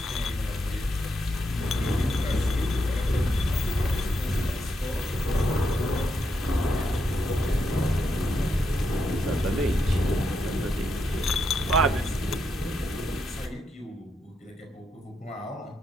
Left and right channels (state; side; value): normal; both; correlation 0.81